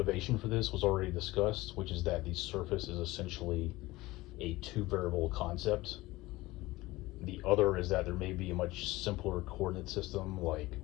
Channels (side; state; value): right; quieter; 19.3 dB